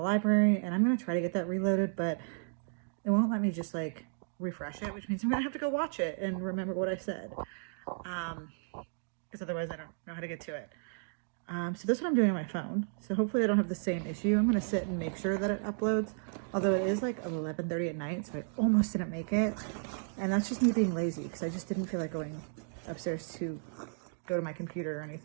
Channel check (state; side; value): silent; left; digital silence